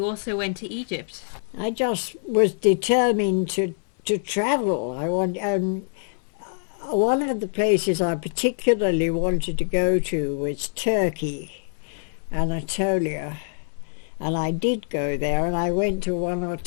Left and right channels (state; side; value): silent; right; 59 dB below the other